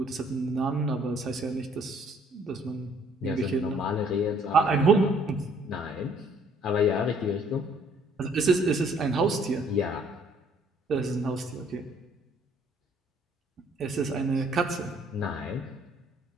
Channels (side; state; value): both; normal; correlation 0.61